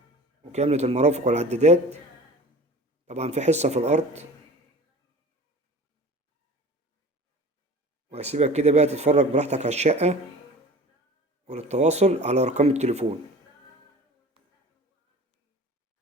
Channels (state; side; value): normal; both; correlation 0.40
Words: وكاملة المرافق والعدادات. طبعا في حصة في الأرض. وهسيبك كده بقى تتفرج براحتك على الشقة، وللتواصل على أرقام التليفون.